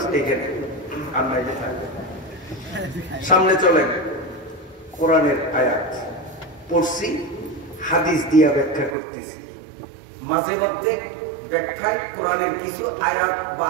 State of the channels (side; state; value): left; drops out; at 9.0 s